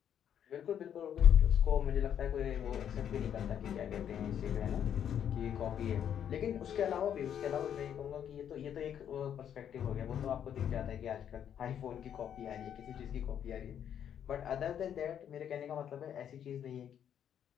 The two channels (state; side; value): quieter; right; 9.2 dB